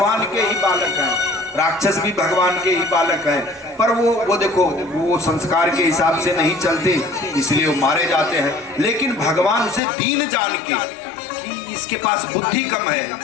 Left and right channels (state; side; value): drops out; right; at 9.8 s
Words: के ही बालक हैं। राक्षस भी भगवान के ही बालक हैं, पर वो देखो वो संस्कार के हिसाब से नहीं चलते, इसलिए वो मारे जाते हैं। लेकिन भगवान उसे दीन जान के, इसके पास बुद्धि कम है,